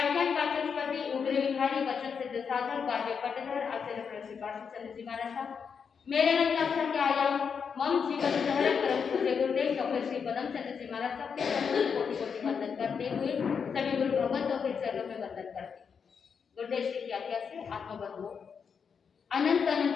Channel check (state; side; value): quieter; right; 6.4 dB